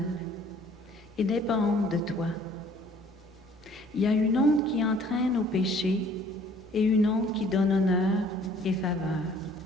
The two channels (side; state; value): both; normal; correlation 0.56